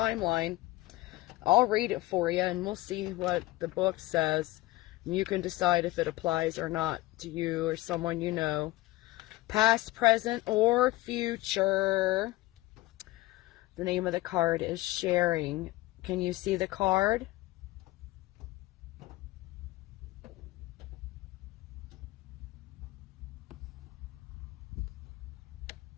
I'll read it for you and we'll see what the book says. You can decide if it applies or not to you or someone you know. Past, present, or future. The name of the card is Sharing. Can you see the card?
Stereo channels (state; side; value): quieter; right; 18.5 dB